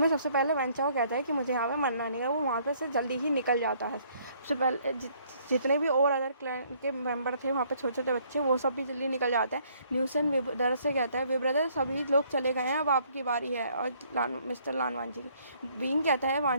सबसे पहले वेंचाओ कहता है कि मुझे यहाँ पे मरना नहीं है। वो वहाँ पे से जल्दी ही निकल जाता है। सबसे पहले जितने भी और अदर क्लैन के मेंबर थे वहाँ पे छोटे छोटे बच्चे वो सब भी जल्दी निकल जाते हैं। न्यूसन ब्रदर से कहता है वे ब्रदर सभी लोग चले गए हैं, अब आपकी बारी है और मिस्टर लानवांजी की। विंग कहता है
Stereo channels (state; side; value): inverted; both; correlation -0.64